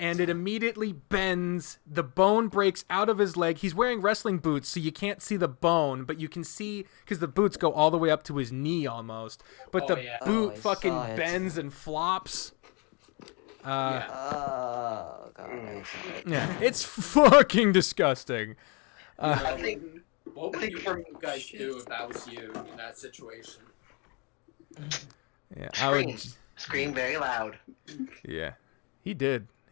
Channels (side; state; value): right; quieter; 31.7 dB